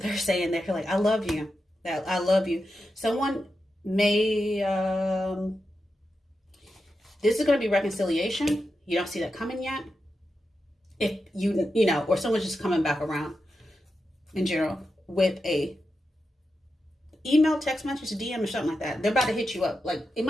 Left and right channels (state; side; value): normal; both; correlation 0.89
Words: they're saying. They're like, I love you. I love you. Someone may, this is going to be reconciliation. You don't see that coming yet. If you know, or someone's just coming back around in general with a email, text message, DM or something like that. They're about to hit you up. Like, it